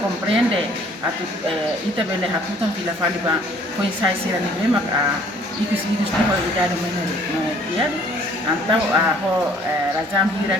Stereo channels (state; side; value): normal; both; correlation 0.57